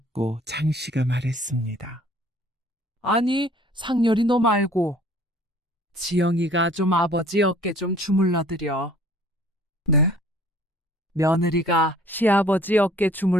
장 씨가 말했습니다. 아니, 상렬이 너 말고. 지영이가 좀 아버지 어깨 좀 주물러드려. 네, 며느리가 시아버지 어깨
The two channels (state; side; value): normal; both; correlation 0.54